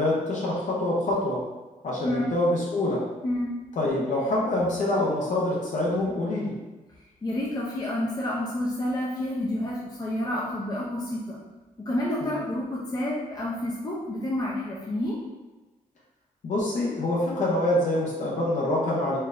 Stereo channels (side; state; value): both; normal; correlation 0.60